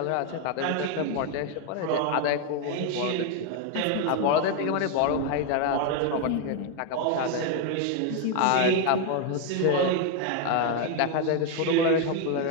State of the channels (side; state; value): both; different; correlation 0.01